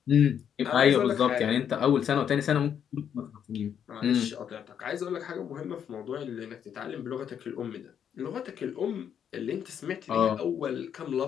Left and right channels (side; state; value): right; quieter; 8.6 dB